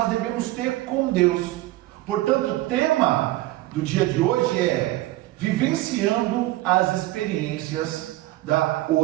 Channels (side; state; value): left; quieter; 17.4 dB